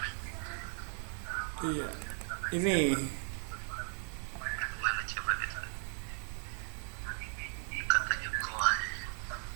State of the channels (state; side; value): silent; left; 53 dB below the other